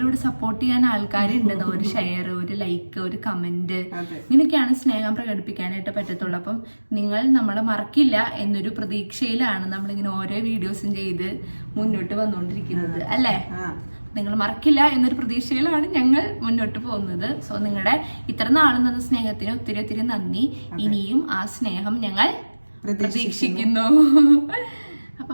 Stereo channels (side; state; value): both; inverted; correlation -1.00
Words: ഇവിടെ സപ്പോർട്ട് ചെയ്യാൻ ആൾക്കാരുണ്ട്. ഒരു ഷെയർ, ഒരു ലൈക്ക്, ഒരു കമന്റ്, ഇങ്ങനെയൊക്കെയാണ് സ്നേഹം പ്രകടിപ്പിക്കാനായിട്ട് പറ്റത്തുള്ളൂ. അപ്പം നിങ്ങൾ നമ്മളെ മറക്കില്ല എന്നൊരു പ്രതീക്ഷയിലാണ് നമ്മളിങ്ങനെ ഓരോ വീഡിയോസും ചെയ്ത് മുന്നോട്ട് വന്നുകൊണ്ടിരിക്കുന്നത് അല്ലേ. നിങ്ങൾ മറക്കില്ല എന്നൊരു പ്രതീക്ഷയിലാണ് ഞങ്ങൾ മുന്നോട്ട് പോകുന്നത്. സോ നിങ്ങളുടെ ഇത്ര നാളും തന്ന സ്നേഹത്തിന് ഒത്തിരി ഒത്തിരി നന്ദി. ഇനിയും ആ സ്നേഹം ഞങ്ങൾ പ്രതീക്ഷിക്കുന്നു. അപ്പൊ